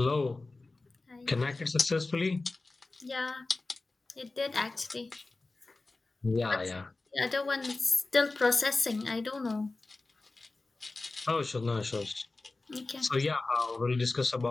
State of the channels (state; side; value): quieter; right; 3.4 dB